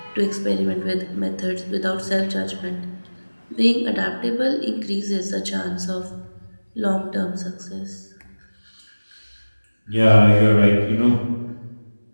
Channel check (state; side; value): inverted; both; correlation -1.00